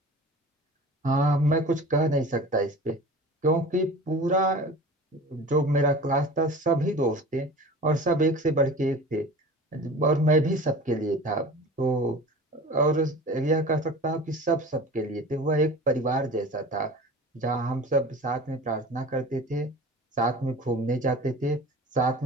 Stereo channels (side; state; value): both; normal; correlation 0.38